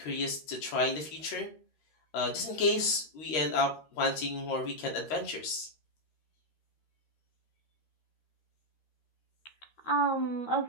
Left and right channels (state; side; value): late; right; 13 ms